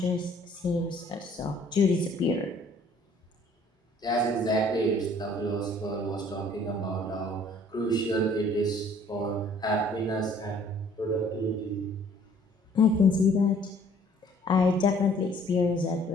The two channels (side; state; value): both; normal; correlation 0.57